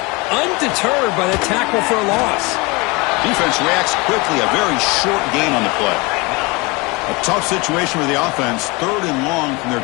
undeterred by the tackle for a loss. Defense reacts quickly, a very short gain on the play. A tough situation for the offense, 3rd and long from their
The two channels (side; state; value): right; quieter; 26.2 dB